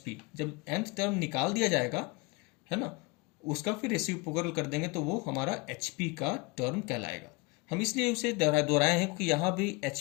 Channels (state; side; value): quieter; right; 26.0 dB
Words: जब nth टर्म निकाल दिया जाएगा है ना, उसका फिर रेसिप्रोकल कर देंगे तो वो हमारा HP का टर्म कहलाएगा। हम इसलिए उसे दोहराए हैं क्योंकि यहाँ भी